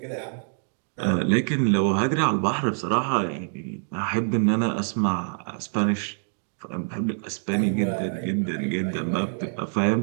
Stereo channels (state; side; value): silent; left; digital silence